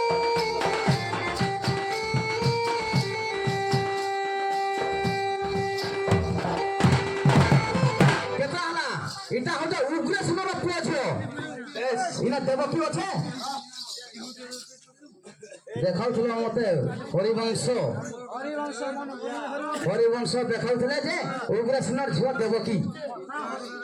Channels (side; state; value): both; identical; correlation 1.00